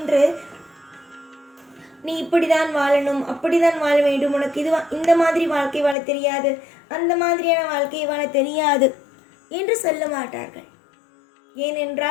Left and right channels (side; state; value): right; drops out; at 6.0 s